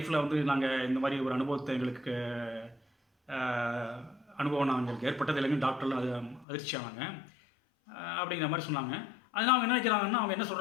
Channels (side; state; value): right; drops out; at 6.5 s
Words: வந்து நாங்கள் இந்த மாதிரி ஒரு அனுபவத்தை எங்களுக்கு அனுபவம் எங்களுக்கு ஏற்பட்டது இல்லைங்க. டாக்டர்லாம் அது அதிர்ச்சியானாங்க அப்படிங்கிற மாதிரி சொன்னாங்க. அதனால் அவங்க என்ன நினைக்கிறாங்கன்னா, அவங்க என்ன